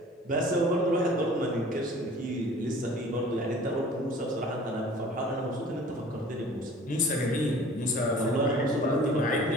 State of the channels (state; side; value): normal; both; correlation 0.47